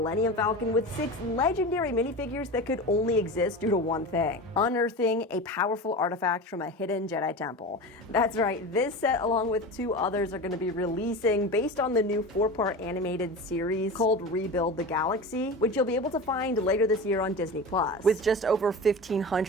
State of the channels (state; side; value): normal; both; correlation 0.29